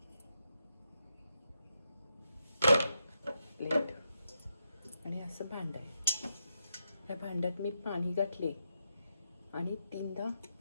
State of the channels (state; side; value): inverted; both; correlation -0.83